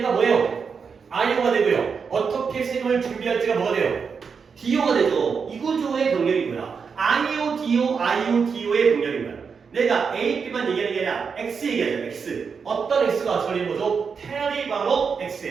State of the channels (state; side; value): quieter; left; 5.8 dB